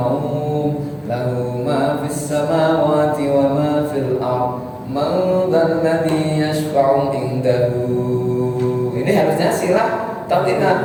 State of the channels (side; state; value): both; identical; correlation 1.00